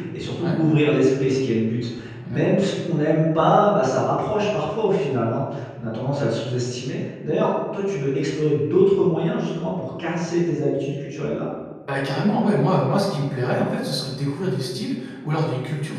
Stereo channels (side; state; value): both; identical; correlation 1.00